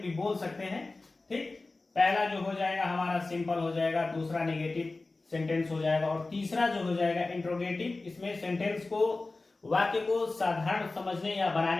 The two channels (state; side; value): quieter; right; 3.3 dB